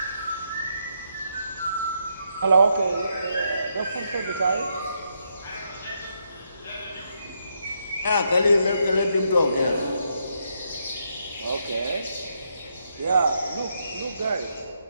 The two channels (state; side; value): inverted; both; correlation -0.78